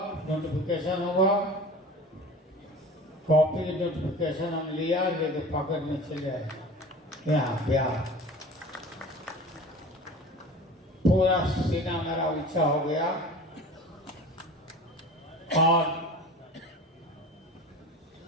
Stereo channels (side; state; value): both; normal; correlation 0.38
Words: नोटिफिकेशन हुआ, कॉपी नोटिफिकेशन हम लिया, लेके पॉकेट में चले आए यहाँ बिहार। पूरा सीना मेरा ऊंचा हो गया और